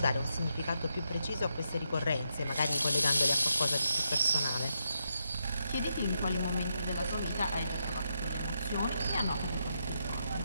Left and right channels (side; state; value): both; inverted; correlation -0.82